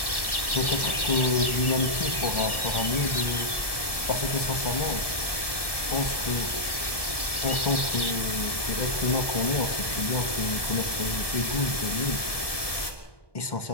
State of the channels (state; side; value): late; right; 1.7 ms